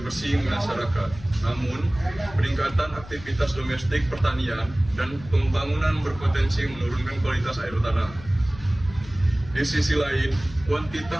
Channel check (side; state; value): left; noise; hum, 16 dB below the sound